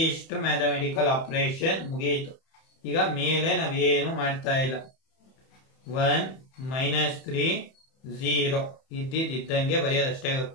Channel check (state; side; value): late; right; 31 ms